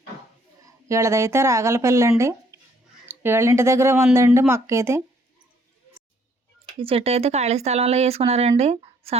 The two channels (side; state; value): both; normal; correlation 0.65